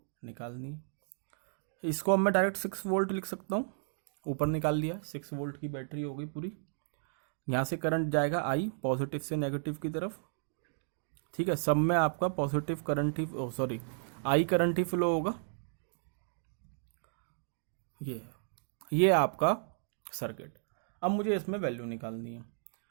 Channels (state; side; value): silent; left; digital silence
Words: निकालनी है। इसको अब मैं डायरेक्ट 6 वोल्ट लिख सकता हूँ, ऊपर निकाल लिया। 6 वोल्ट की बैटरी हो गई पूरी। यहाँ से करंट जाएगा आई, पॉजिटिव से नेगेटिव की तरफ, ठीक है। सब में आपका positive current he, sorry, I current he flow होगा। ये आपका सर्किट। अब मुझे इसमें वैल्यू निकालनी है।